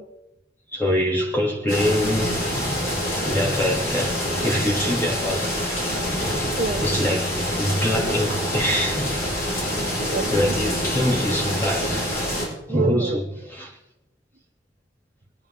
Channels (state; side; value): normal; both; correlation 0.50